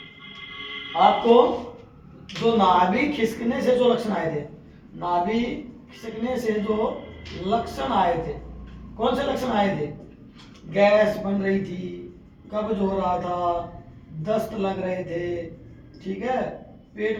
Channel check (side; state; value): both; identical; correlation 1.00